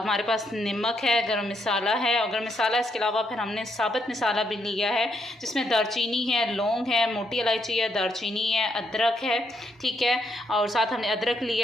पास नमक है, गरम मसाला है, और गरम मसाला इसके अलावा फिर हमने साबुत मसाला भी लिया है जिसमें दालचीनी है, लौंग है, मोटी इलायची है, दालचीनी है, अदरक है, ठीक है, और साथ हमने अदरक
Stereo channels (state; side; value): normal; both; correlation 0.76